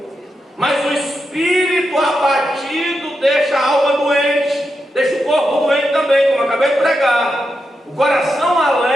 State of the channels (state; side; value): normal; both; correlation 0.86